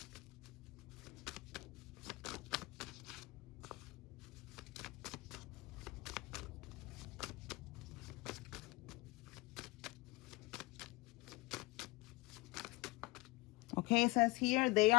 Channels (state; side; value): quieter; right; 23.0 dB